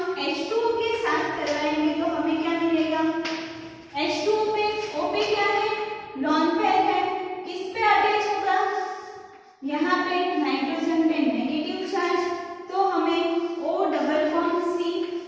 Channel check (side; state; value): both; identical; correlation 1.00